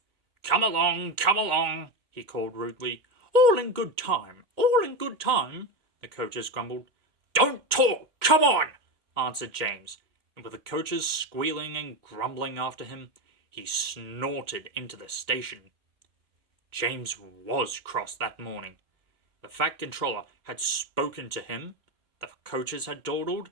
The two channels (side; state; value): left; late; 2.1 ms